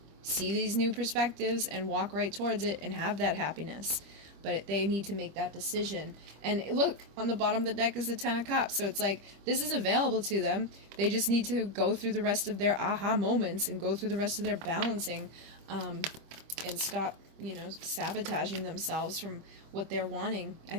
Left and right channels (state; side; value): late; left; 25 ms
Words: see these new perspectives and walk right towards it and have that happiness. But they need to make that decision. And look, on the bottom of the deck is the 10 of Cups. So it's like, this is available to them. They just need to go through the rest of their aha moments and go through the rest of their balancing, and stop, you know, sabotaging themselves from what they're wanting. I